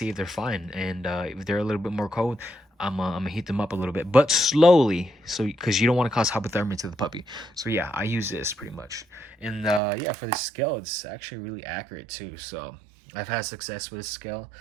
if they're fine. And if they're a little bit more cold, I'm gonna heat them up a little bit, but slowly, so because you don't want to cause hypothermia to the puppy. So yeah, I use this pretty much. And yeah, for the scale, it's actually really accurate too. So I've had success with this scale.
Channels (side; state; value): left; drops out; at 9.8 s